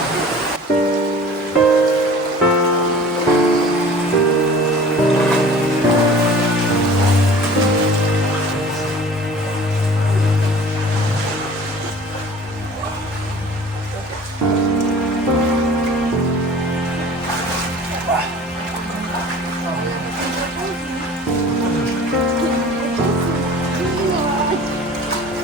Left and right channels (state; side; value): normal; both; correlation 0.44